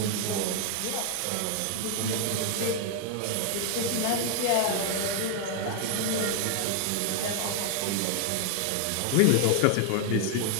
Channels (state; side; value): different; both; correlation 0.00